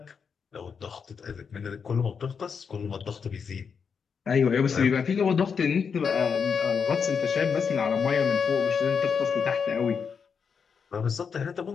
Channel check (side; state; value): right; quieter; 6.2 dB